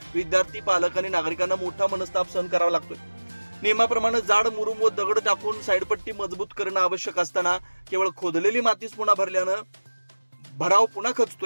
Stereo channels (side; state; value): both; inverted; correlation -1.00